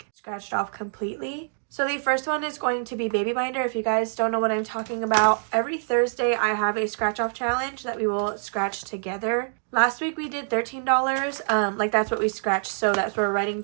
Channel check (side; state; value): left; silent; digital silence